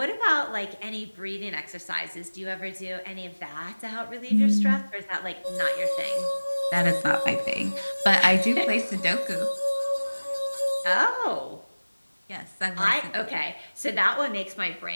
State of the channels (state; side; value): inverted; both; correlation -1.00